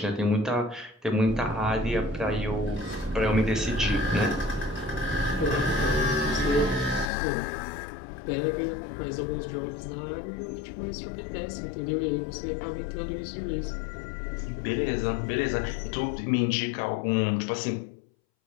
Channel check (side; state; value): right; drops out; at 7.1 s